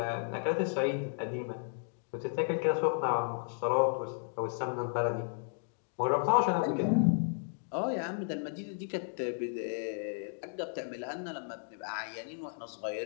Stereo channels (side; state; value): right; silent; digital silence